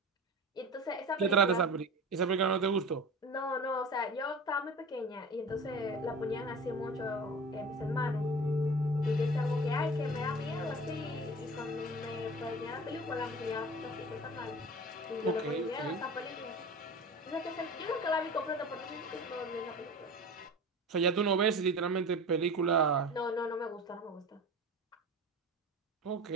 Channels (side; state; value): both; normal; correlation 0.35